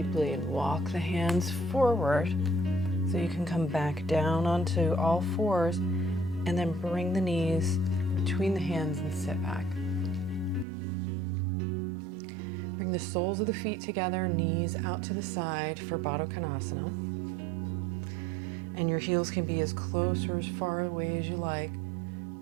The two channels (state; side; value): drops out; left; at 10.7 s